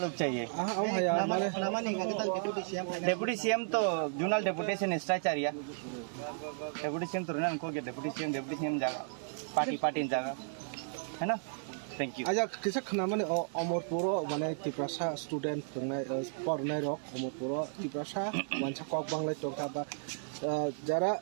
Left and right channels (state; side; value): silent; left; digital silence